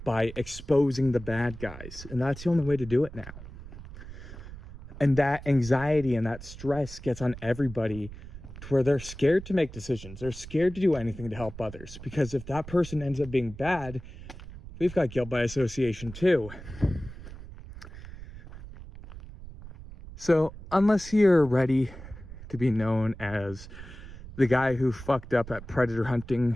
by exposing the bad guys. And that's the only way to do it now. And that anxiety and that stress gets on everybody to where they're scared to make decisions. They're scared to do anything to help others. Because if that person ends up being bad, we've got guilt by association too. So unless you're ready to be known as the guy who fucked up at predator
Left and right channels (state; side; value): noise; right; rumble, 14 dB below the sound